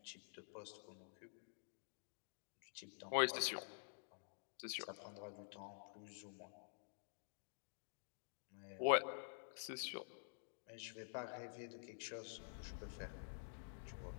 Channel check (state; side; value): silent; right; digital silence